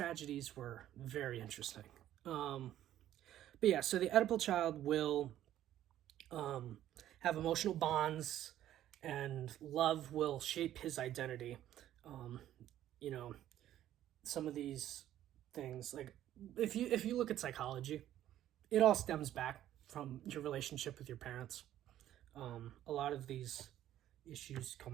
were very interesting. But yeah, so the Oedipal child will have emotional bonds, and love will shape his identity. You know, some of these things, like if you look at psychology, it all stems back from your relationship with your parents. A lot of these issues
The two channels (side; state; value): left; quieter; 12.3 dB